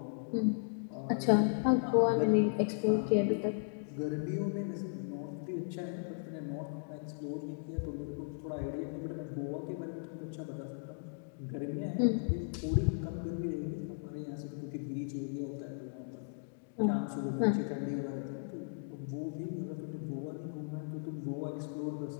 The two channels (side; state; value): right; silent; digital silence